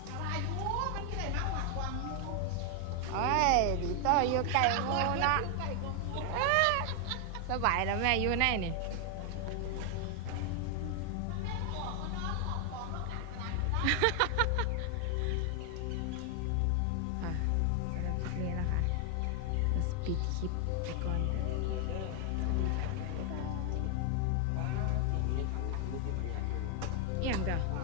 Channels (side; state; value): both; different; correlation 0.00